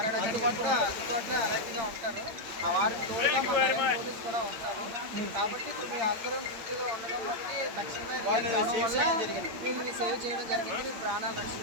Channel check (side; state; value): left; late; 8.7 ms